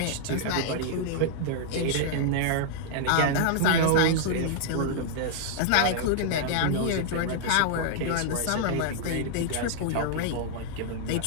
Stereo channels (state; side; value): different; both; correlation -0.01